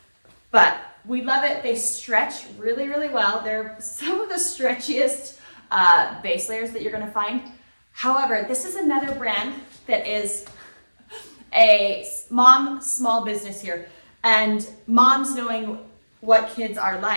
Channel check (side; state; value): both; inverted; correlation -1.00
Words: But we love it. They stretch really, really well. They're some of the stretchiest base layers that you're gonna find. However, this is another brand that is a mom small business here, and moms knowing what kids are